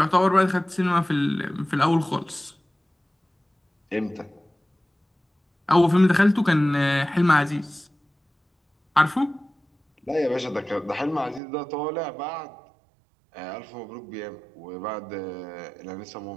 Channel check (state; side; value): drops out; left; at 11.4 s